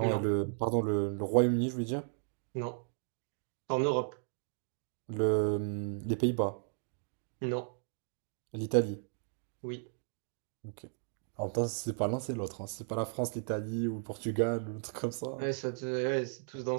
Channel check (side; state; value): left; silent; digital silence